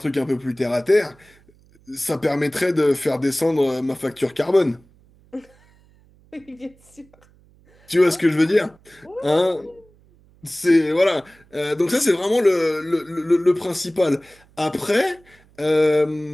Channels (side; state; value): right; noise; hum, 30 dB below the sound